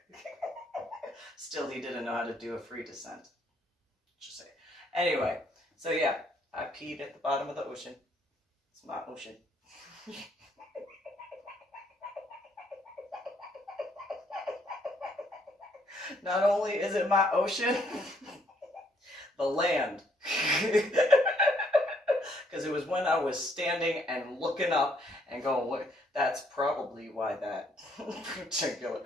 Still, he didn't know how to do a free descent. Just say. Anyway, so yeah, I peed at the bottom of the ocean. It's my ocean. Not only is it my ocean, the land. Because it was when I was standing and looking up and going, what? That's probably why that particular,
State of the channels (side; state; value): both; normal; correlation 0.68